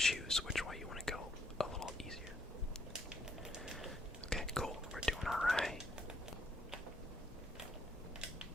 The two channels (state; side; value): normal; both; correlation 0.70